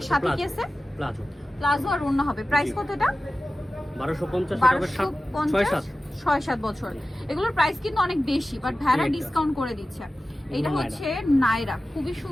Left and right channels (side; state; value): both; normal; correlation 0.95